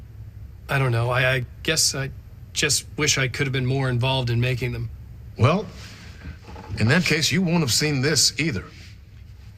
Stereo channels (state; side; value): identical; both; correlation 1.00